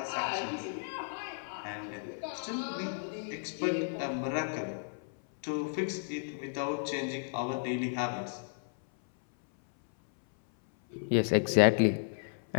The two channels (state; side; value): silent; right; 56 dB below the other